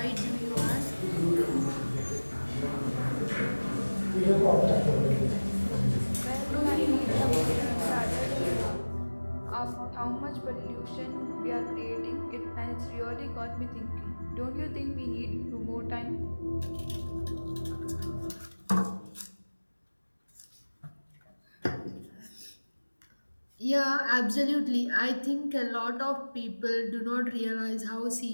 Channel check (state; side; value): inverted; both; correlation -1.00